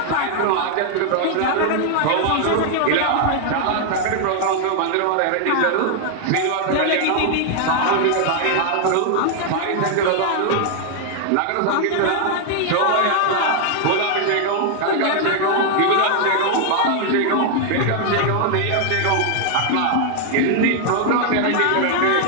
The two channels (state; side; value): different; both; correlation 0.00